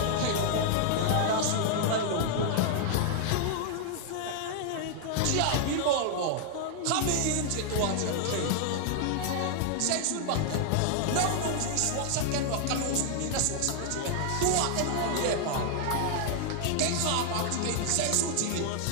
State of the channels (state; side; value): different; both; correlation -0.01